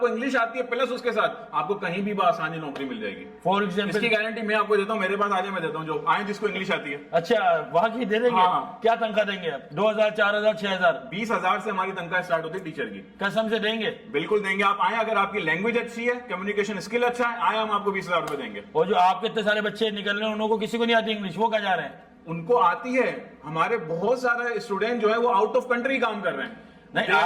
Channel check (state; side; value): identical; both; correlation 1.00